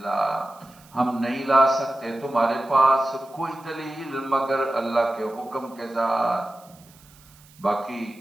ہم نہیں لا سکتے تمہارے پاس کوئی دلیل مگر اللہ کے حکم کے ساتھ۔ باقی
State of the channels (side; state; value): right; noise; hiss, 26 dB below the sound